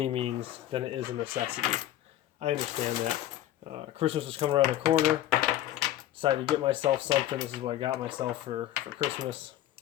means than it is a necessity. I understand that. Christmas was coming around the corner. Decided to get myself something. This is what I got myself for Christmas.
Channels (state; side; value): quieter; right; 13.3 dB